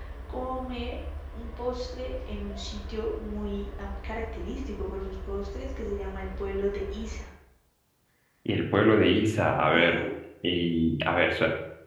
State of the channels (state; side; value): identical; both; correlation 1.00